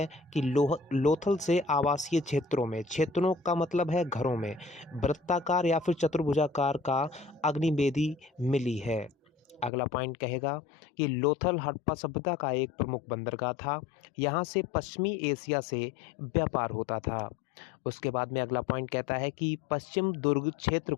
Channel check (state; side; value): drops out; right; at 9.7 s